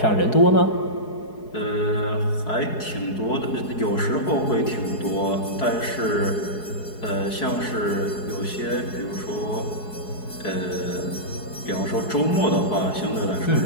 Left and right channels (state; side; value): late; right; 4.7 ms